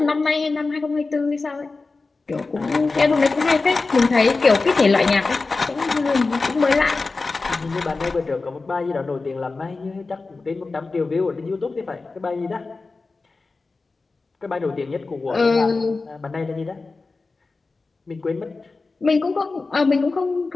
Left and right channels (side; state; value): right; quieter; 3.8 dB